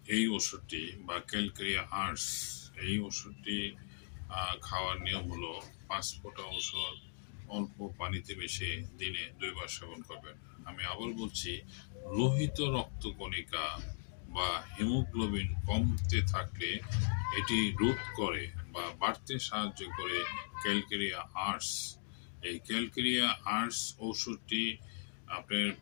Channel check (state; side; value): silent; right; digital silence